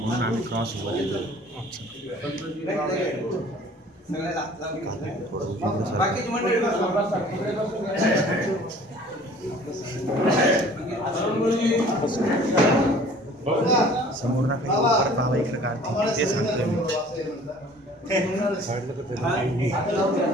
आम्ही क्रॉस वर येतो बाकीची मंडळी समोर ना काही परत बाबा इकडे काढते ते सांगतोय मी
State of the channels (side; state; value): both; normal; correlation 0.50